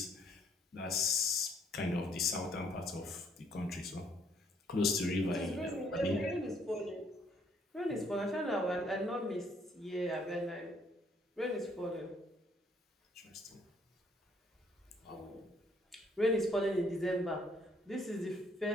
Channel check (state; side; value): normal; both; correlation 0.66